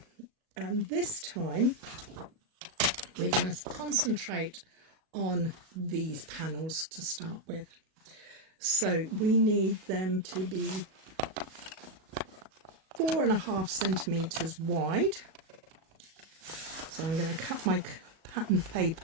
and this time we're going to concentrate on these panels to start with. So we need them to be 4.5 centimetres wide. So I'm going to cut my pattern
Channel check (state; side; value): late; left; 37 ms